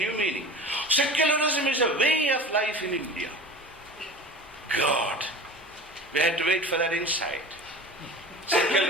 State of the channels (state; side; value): normal; both; correlation 0.36